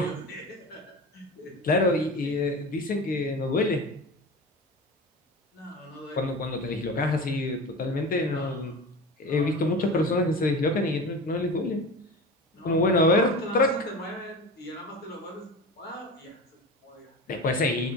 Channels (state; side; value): normal; both; correlation 0.31